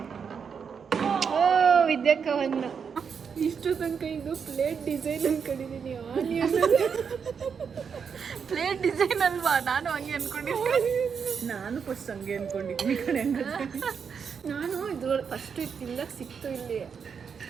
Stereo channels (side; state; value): left; quieter; 6.5 dB